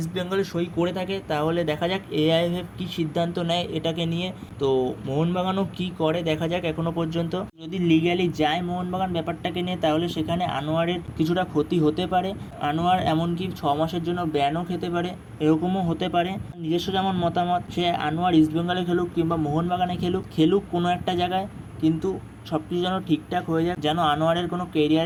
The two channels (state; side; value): identical; both; correlation 1.00